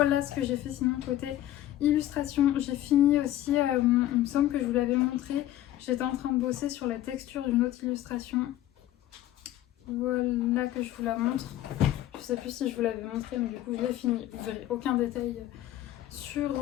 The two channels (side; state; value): right; quieter; 13.5 dB